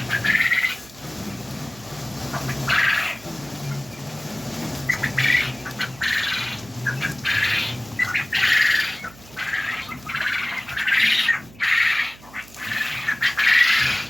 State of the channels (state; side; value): noise; right; hum, 22 dB below the sound